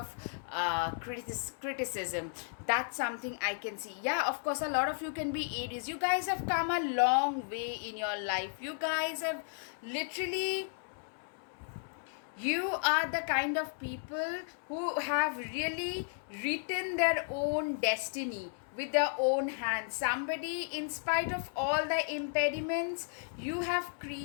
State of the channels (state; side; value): silent; right; 55 dB below the other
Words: criticism. That's something I can see. Yeah, of course, a lot of you can be Aries. You guys have come a long way in your life. You guys have literally, you are the kind of people who have really written their own destiny with their own hands. Somebody, in spite of all the impediments, you have